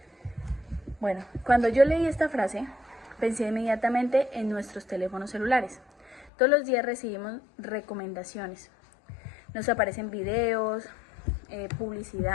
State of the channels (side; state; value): right; drops out; at 6.3 s